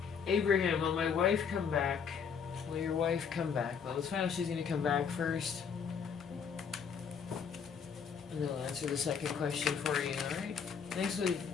Abraham, will my wife come back? Will your wife come back? Well, let's find out if she's going to come back first. And then I'll answer the second question for you, alright? Thank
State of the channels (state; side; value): quieter; right; 6.6 dB